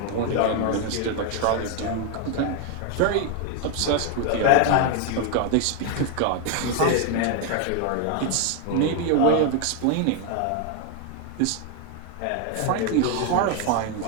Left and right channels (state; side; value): different; both; correlation 0.01